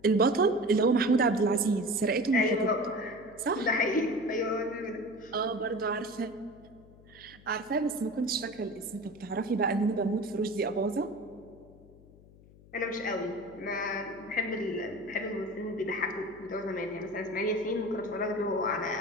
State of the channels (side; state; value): left; noise; hum, 23 dB below the sound